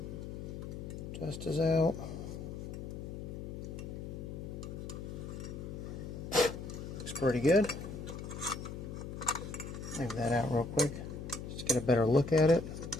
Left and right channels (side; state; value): left; noise; hum, 7 dB below the sound